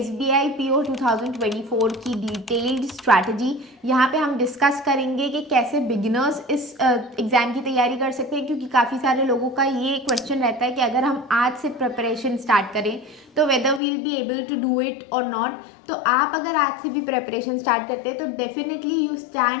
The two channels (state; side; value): drops out; right; at 13.8 s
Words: PO 2024 की डिटेल्ड स्ट्रैटेजी। यहाँ पे हम डिस्कस करेंगे कि कैसे बिगिनर्स इस एग्ज़ाम की तैयारी कर सकते हैं, क्योंकि काफ़ी सारे लोगों का ये क्वेश्चन रहता है कि अगर हम आज से प्रिपरेशन स्टार्ट करें तो whether will be able to do it और नॉट। तो आप अगर आज से भी प्रिपरेशन स्टार्ट करते हैं तो definitely you